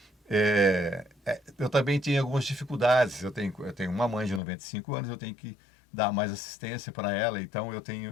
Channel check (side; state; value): right; drops out; at 4.4 s